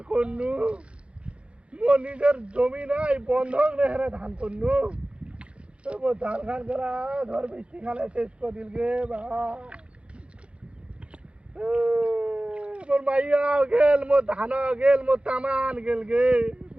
করনু, মোর নিজের জমি নাই বন্ধক নেহারে ধান করনু। মোর ধান খান করা ধর বৃষ্টি খালে শেষ করে দিল গে বা। মোর মাইয়াও গেল, মোর ধানও গেল, মোর তামান গেল গে।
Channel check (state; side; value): late; left; 0.059 ms